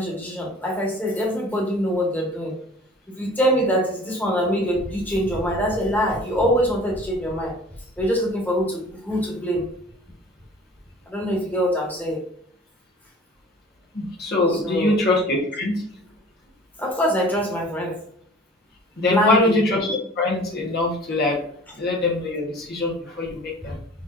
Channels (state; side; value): normal; both; correlation 0.46